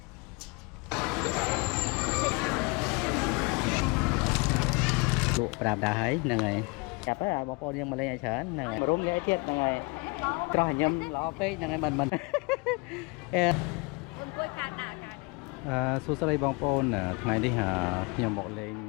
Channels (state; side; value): quieter; right; 29.3 dB